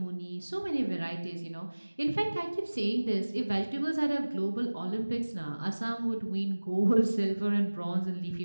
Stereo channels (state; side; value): inverted; both; correlation -1.00